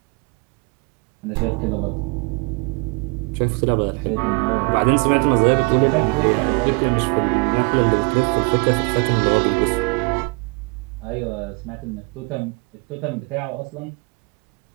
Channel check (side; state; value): left; quieter; 31.7 dB